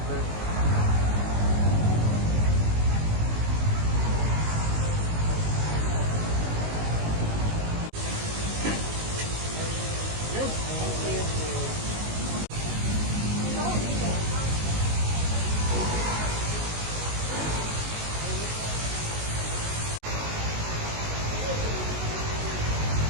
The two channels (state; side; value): late; left; 19 ms